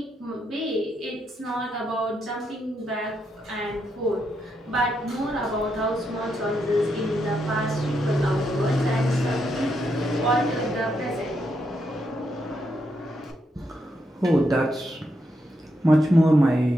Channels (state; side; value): normal; both; correlation 0.80